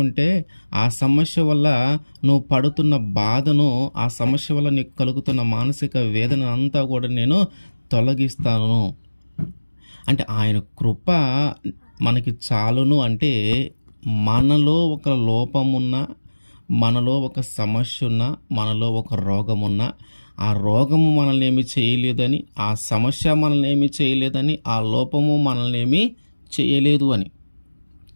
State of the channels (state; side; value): inverted; both; correlation -1.00